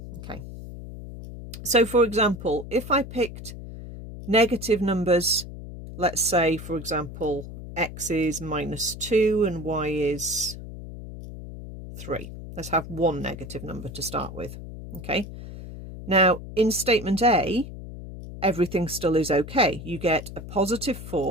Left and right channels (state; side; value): noise; left; hum, 11 dB below the sound